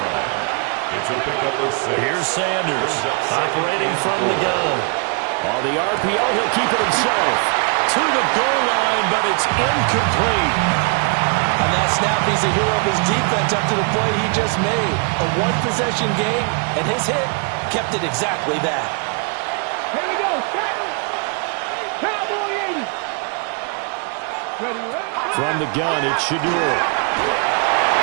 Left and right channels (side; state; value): left; quieter; 37.7 dB